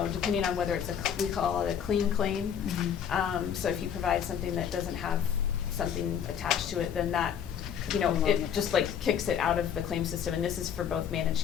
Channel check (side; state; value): right; quieter; 8.4 dB